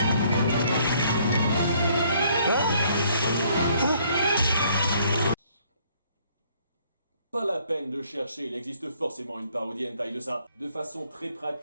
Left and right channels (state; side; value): inverted; both; correlation -0.64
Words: Pas la peine de chercher, il existe forcément une parodie hentai de ça. De façon très